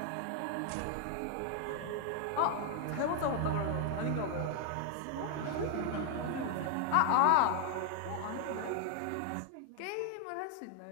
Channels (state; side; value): different; both; correlation 0.00